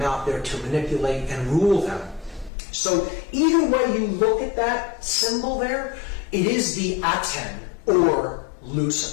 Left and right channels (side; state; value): right; drops out; at 2.5 s